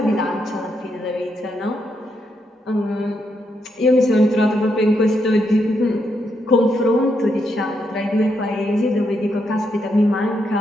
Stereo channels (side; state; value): both; normal; correlation 0.79